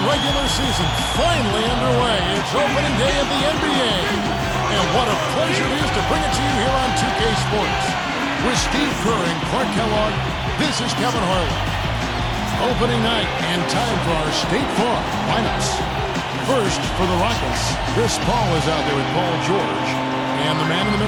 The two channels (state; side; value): identical; both; correlation 1.00